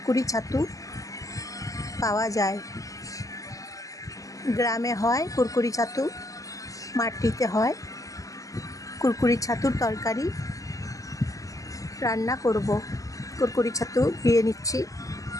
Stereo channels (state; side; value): late; right; 0.16 ms